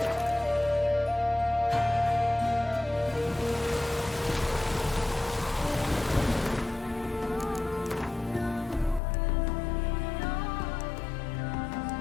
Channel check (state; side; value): drops out; right; at 9.0 s